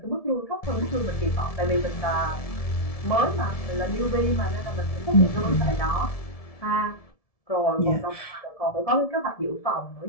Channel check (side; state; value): right; late; 1.7 ms